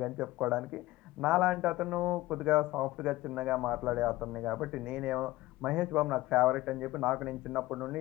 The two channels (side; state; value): right; quieter; 18.0 dB